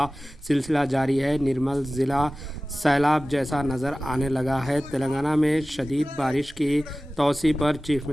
सिलसिला जारी है। निर्मल ज़िला सैलाब जैसा नज़र आने लगा है। तेलंगाना में शदीद बारिश की तौसी पर चीफ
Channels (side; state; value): both; normal; correlation 0.97